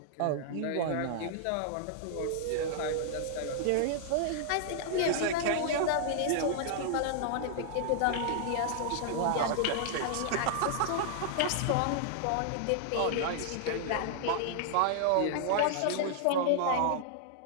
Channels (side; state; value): both; different; correlation -0.01